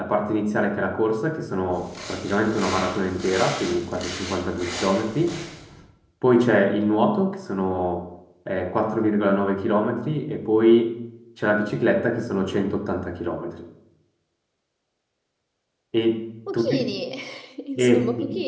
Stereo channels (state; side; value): identical; both; correlation 1.00